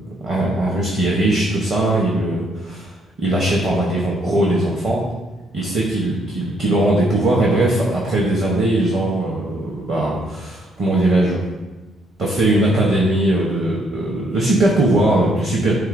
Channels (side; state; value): both; normal; correlation 0.70